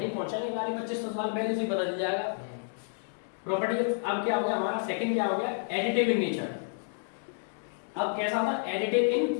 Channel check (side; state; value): right; silent; digital silence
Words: पहुंचेंगे वाले 2500 साल पहले से पता चल जाएगा। प्रॉपर्टी अब क्या हो गया हमारा, सेकंड क्या हो गया, एडिटिव इन नेचर। अब कैसा था? Additive in